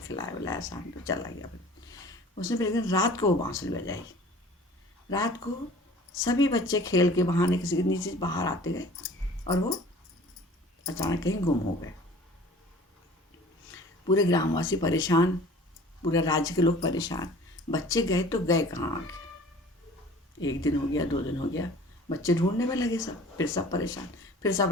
खिलाया बुलाया, शाम को चला गया। उसने फिर एक दिन रात को वो बाँसुरी बजाई। रात को सभी बच्चे खेल के बहाने किसी के नीचे बाहर आते गए और वो अचानक कहीं गुम हो गए। पूरे ग्रामवासी परेशान, पूरे राज्य के लोग परेशान। बच्चे गए तो गए कहाँ आगे। 1 दिन हो गया, 2 दिन हो गया, बच्चे ढूंढने में लगे सब, फिर सब परेशान। फिर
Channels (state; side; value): normal; both; correlation 0.46